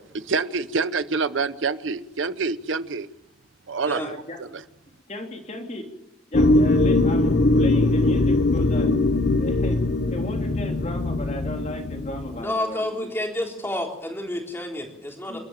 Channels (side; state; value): both; normal; correlation 0.53